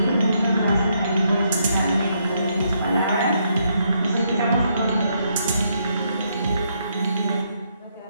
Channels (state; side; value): inverted; both; correlation -0.75